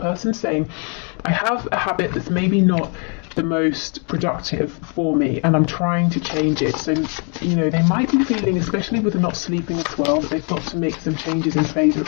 saying, I have a habit that's maybe not the most productive for me and I'm trying to change it. So, you know, they might be feeling, especially with the not sleeping as well, that they've got to make some changes in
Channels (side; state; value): right; quieter; 38.3 dB